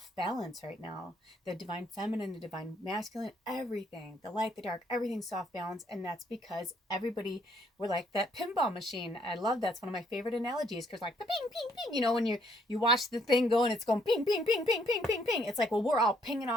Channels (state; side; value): normal; both; correlation 0.68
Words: balance right now. The divine feminine, the divine masculine, everything, the light, the dark, everything's off balance. And that's because everybody, we're like that pinball machine. I love that's one of my favorite analogies, because like the ping, ping, ping, you know, when you watch the thing go and it's going ping, ping, ping, ping, ping, ping, ping. It's like, well, we're all pinging